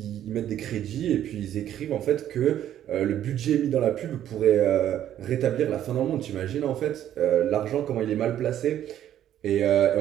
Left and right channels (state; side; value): quieter; left; 11.2 dB